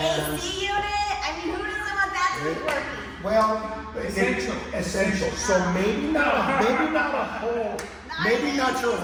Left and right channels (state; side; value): identical; both; correlation 1.00